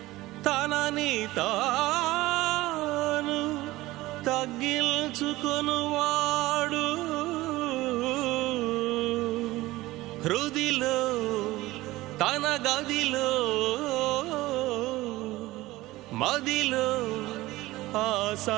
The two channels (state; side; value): quieter; left; 18.3 dB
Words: తనని తాను తగ్గించుకొనువాడు హృదిలో తన గదిలో మదిలో ఆ